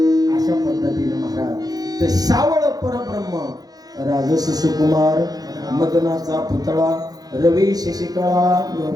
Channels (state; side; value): late; left; 0.19 ms